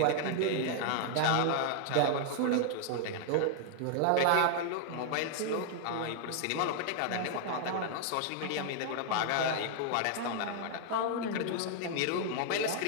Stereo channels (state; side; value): different; both; correlation 0.00